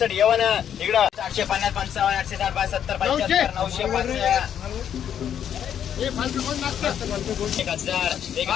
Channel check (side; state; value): right; quieter; 9.2 dB